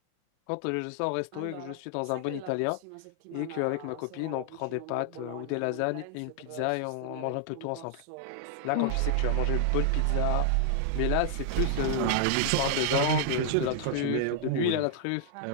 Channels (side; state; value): both; different; correlation -0.01